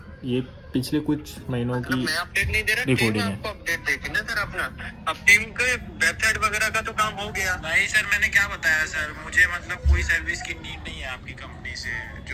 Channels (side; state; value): both; identical; correlation 1.00